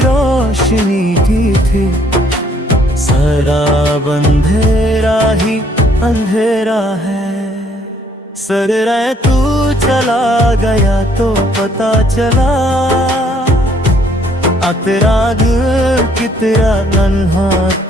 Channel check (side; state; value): both; normal; correlation 0.65